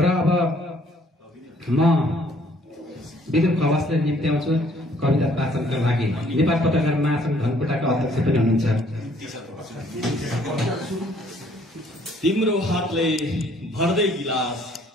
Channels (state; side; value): normal; both; correlation 0.62